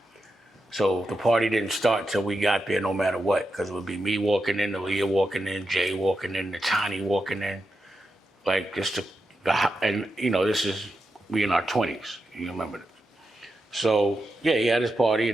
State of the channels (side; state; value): both; normal; correlation 0.88